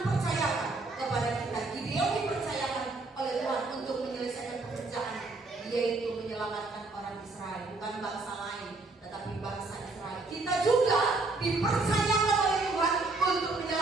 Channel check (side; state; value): left; quieter; 3.4 dB